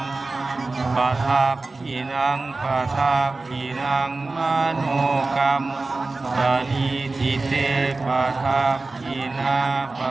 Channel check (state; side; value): quieter; left; 3.4 dB